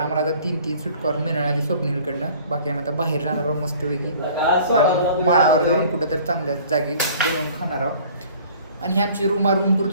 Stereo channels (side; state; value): both; inverted; correlation -0.50